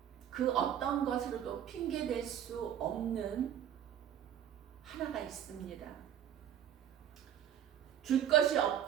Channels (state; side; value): quieter; left; 10.2 dB